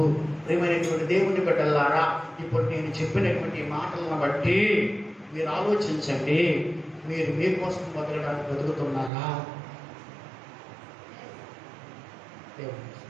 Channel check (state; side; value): drops out; left; at 9.1 s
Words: ప్రియమైనటువంటి దేవుని బిడ్డలారా, ఇప్పుడు నేను చెప్పినటువంటి మాటలను బట్టి మీరు ఆలోచించండి. మీరు మీ కోసం బతకడానికి బతుకుతున్నారా?